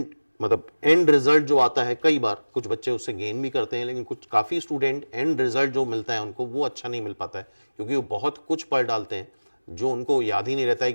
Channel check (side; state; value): both; inverted; correlation -1.00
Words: रिजल्ट जो आता है, कई बार कुछ बच्चे उससे गेन भी करते हैं, लेकिन कुछ काफ़ी स्टूडेंट एंड रिजल्ट जो मिलता है उनको वो अच्छा नहीं मिल पाता है, क्योंकि वो बहुत कुछ पढ़ डालते हैं जो उनको याद ही नहीं रहता है